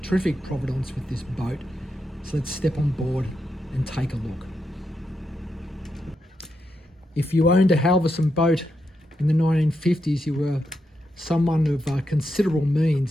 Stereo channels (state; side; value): normal; both; correlation 0.84